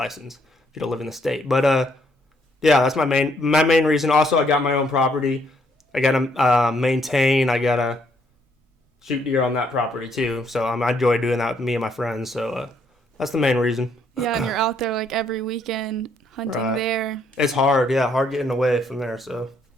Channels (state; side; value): normal; both; correlation 0.70